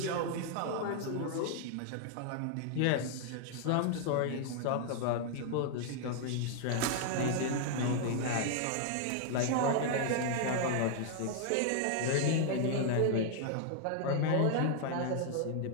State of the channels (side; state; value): both; different; correlation 0.00